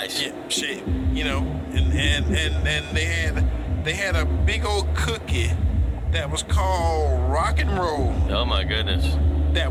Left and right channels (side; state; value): both; identical; correlation 1.00